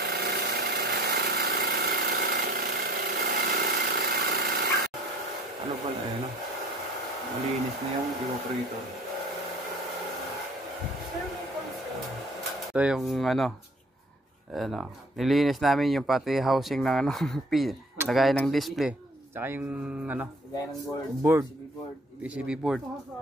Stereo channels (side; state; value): both; normal; correlation 0.53